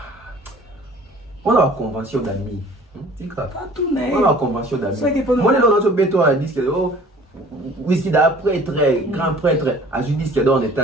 On a la convention d'amis. Pas tout, mais. On a la convention d'amis. Moi, les gens qui ont disque d'or, whisky d'un prêtre, grand prêtre, à un disque d'or en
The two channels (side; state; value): both; normal; correlation 0.49